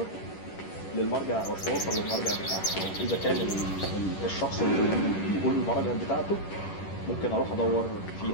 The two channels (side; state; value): right; late; 10 ms